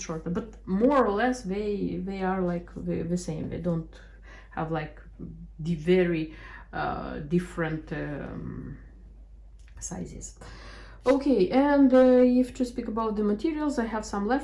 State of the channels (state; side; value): identical; both; correlation 1.00